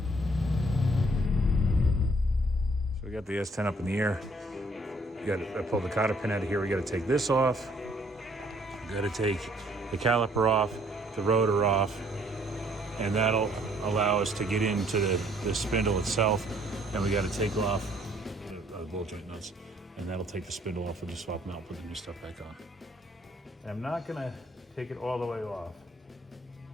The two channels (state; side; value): normal; both; correlation 0.63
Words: So we got the S-10 up in the air. I pulled the cotter pin out of here. We got to take this off. We got to take the caliper off, the rotor off, and that'll allow us to get into the spindle itself, and we got to take off the ball joint nuts, and that'll take the spindle off. We'll just swap them out, put the new stuff back on. And I'm not gonna take it all the way off